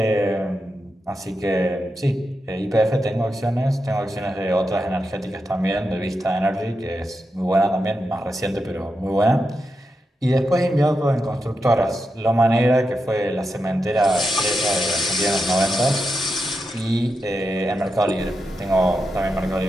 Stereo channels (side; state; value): both; normal; correlation 0.87